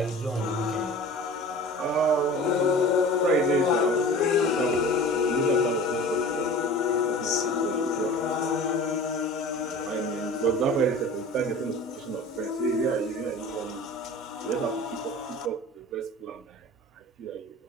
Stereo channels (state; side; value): normal; both; correlation 0.39